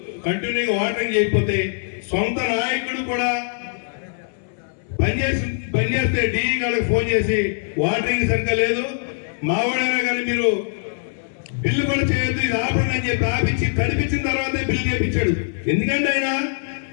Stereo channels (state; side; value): silent; right; 64 dB below the other